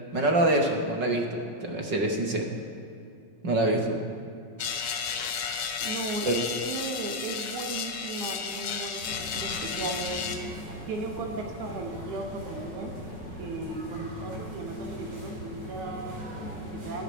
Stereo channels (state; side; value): late; left; 5.0 ms